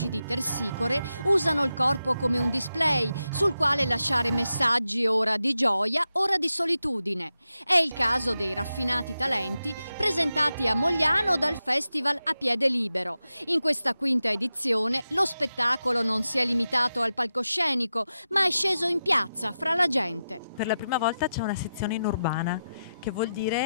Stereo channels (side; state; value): both; inverted; correlation -0.90